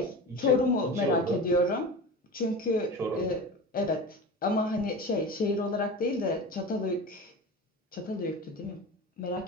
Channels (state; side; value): normal; both; correlation 0.30